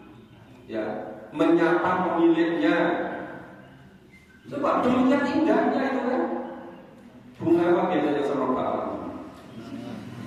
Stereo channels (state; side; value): identical; both; correlation 1.00